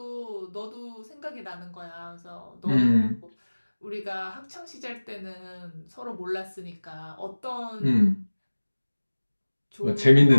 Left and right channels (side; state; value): both; inverted; correlation -1.00